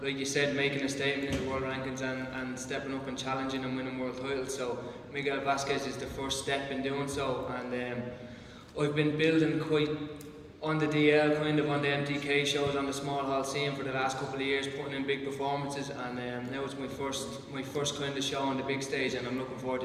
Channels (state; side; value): identical; both; correlation 1.00